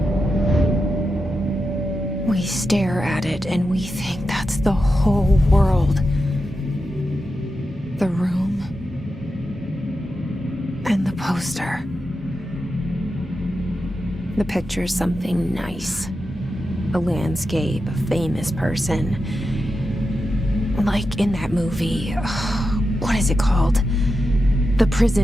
We stare at it and we think that's the whole world. The room and the poster. The picture's something nice. A landscape, a famous person. Like in that movie, what is it called? The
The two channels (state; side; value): normal; both; correlation 0.89